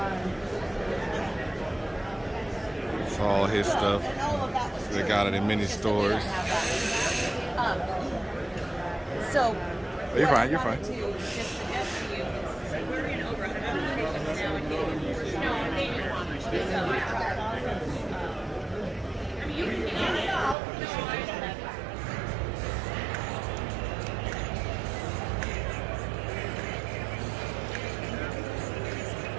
It's all his stuff. They got it in many stores. So Oh, you're fine. You're fine.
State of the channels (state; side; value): drops out; left; at 20.6 s